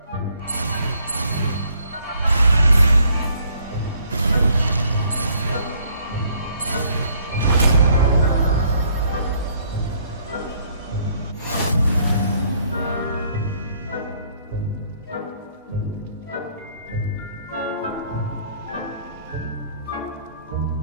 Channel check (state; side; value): inverted; both; correlation -0.64